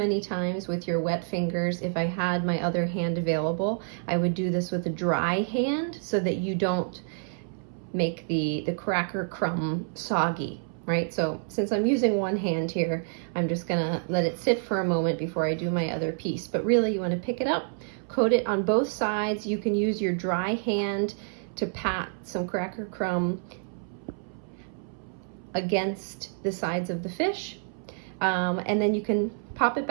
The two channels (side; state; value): left; silent; 59 dB below the other